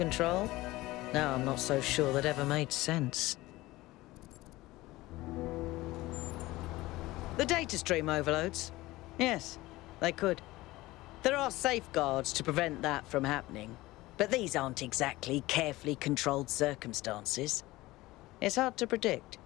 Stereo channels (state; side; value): quieter; right; 18.8 dB